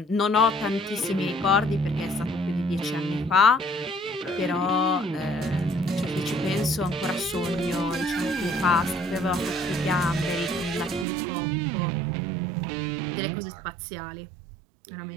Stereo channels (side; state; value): left; drops out; at 11.1 s